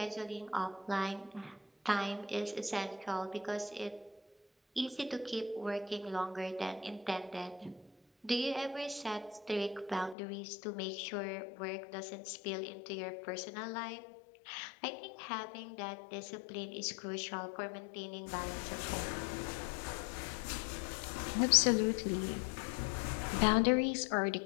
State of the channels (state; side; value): drops out; right; at 10.2 s